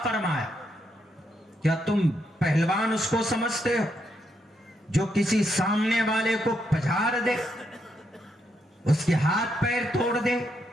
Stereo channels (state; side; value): normal; both; correlation 0.79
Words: فرمایا؟ کیا تم پہلوان اس کو سمجھتے ہو جو کسی سامنے والے کو پجھاڑ دے، اس کے ہاتھ پیر توڑ دے،